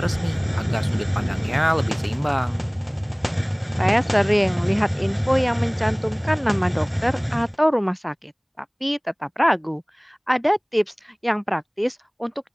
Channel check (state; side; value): identical; both; correlation 1.00